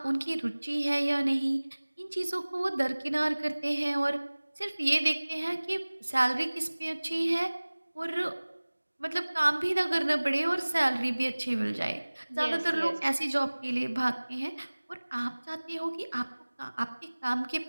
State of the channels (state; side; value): inverted; both; correlation -1.00